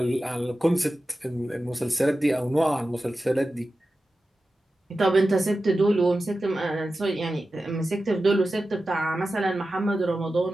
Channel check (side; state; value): both; normal; correlation 0.93